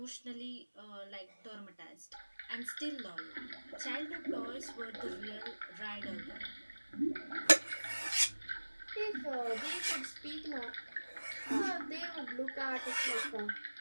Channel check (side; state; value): both; inverted; correlation -1.00